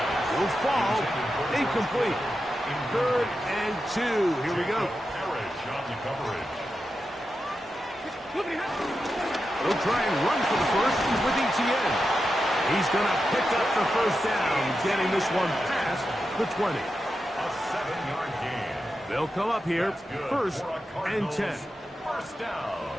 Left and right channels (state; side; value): normal; both; correlation 0.89